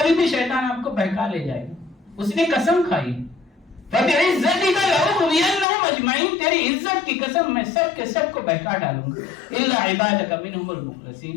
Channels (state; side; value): drops out; right; at 5.7 s